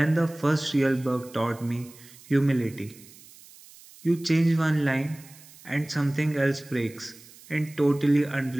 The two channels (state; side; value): noise; right; hiss, 22 dB below the sound